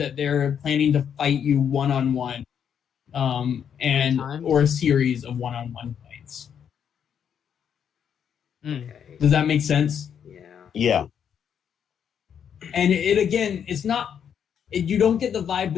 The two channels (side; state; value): right; quieter; 8.2 dB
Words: they're planning to fight you one-on-one, or a series of one-on-one fights. Okay. Does that make sense? Yeah. And it's not. You don't get the vibe